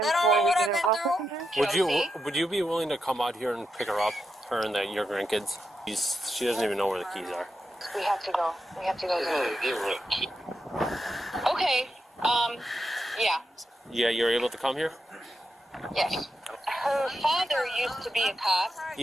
They don't know what I've been through. Would you be willing to come out here and pick her up, her and your grandkids? She doesn't even know where the keys are. We have to go. We have to go. Okay. Yeah. Yeah, you're able to come here? Yes. Her father used to be a cop.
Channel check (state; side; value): normal; both; correlation 0.86